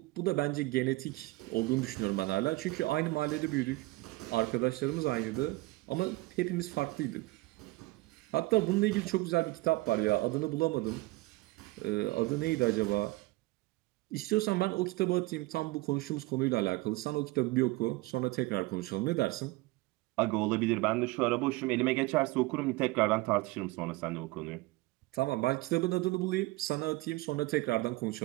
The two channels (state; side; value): quieter; left; 20.9 dB